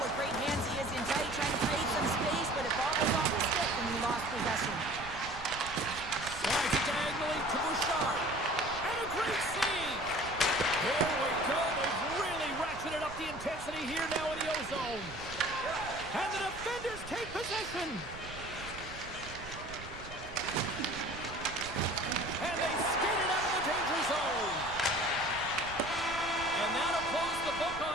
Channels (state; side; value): noise; right; rumble, 14 dB below the sound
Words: what great hands he is in tight, trying to create some space, but it bobbles off his stick and he lost possession. Slides it diagonally to Bouchard. And a great save! Here we go. They've really ratcheted up the intensity here now in the O-zone. And the defenders take possession. And they skate it out of the danger zone. And that'll close the book